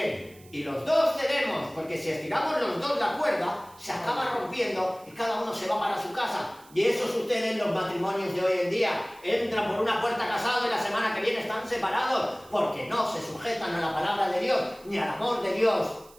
Y los dos cedemos, porque si estiramos los dos la cuerda, se acaba rompiendo y cada uno se va para su casa. Y eso sucede en los matrimonios de hoy en día. Entran por una puerta casados y la semana que viene están separados, porque no se sujetan a la palabra de Dios, ni al amor de Dios.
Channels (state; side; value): noise; right; hiss, 25 dB below the sound